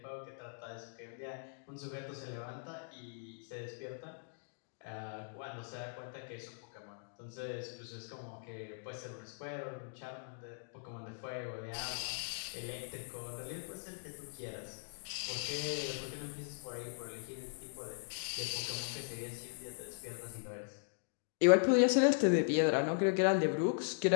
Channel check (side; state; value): right; silent; digital silence